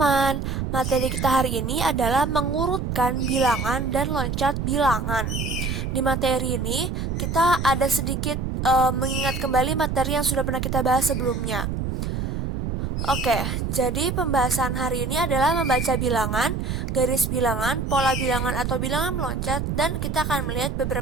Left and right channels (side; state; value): right; noise; rumble, 2 dB below the sound